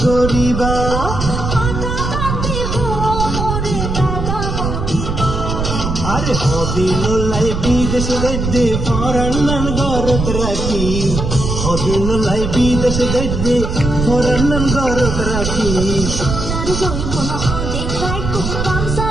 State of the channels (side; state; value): right; noise; rumble, 3 dB below the sound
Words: আরে হদিন লাই বিদেশ গদ্দে ফরান্নান গরত রাখি হদিন লাই বিদেশ গদ্দে ফরান্নান গরত রাখি